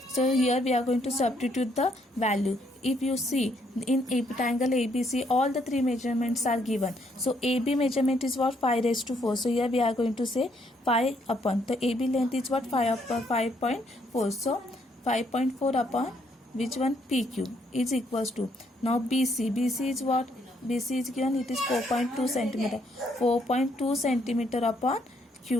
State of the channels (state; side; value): normal; both; correlation 0.71